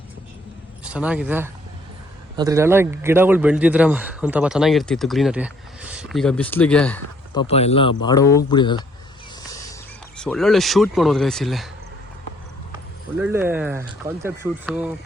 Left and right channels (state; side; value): normal; both; correlation 0.64